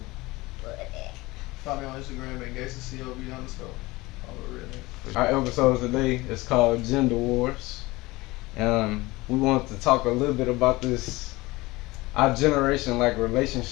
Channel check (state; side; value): quieter; right; 21.1 dB